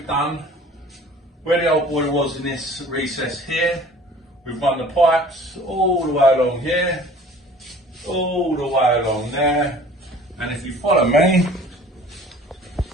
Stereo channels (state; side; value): normal; both; correlation 0.48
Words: done, where the old boiler was in this recess here, we've run the pipes all the way along here, all the way along there, and if you follow me,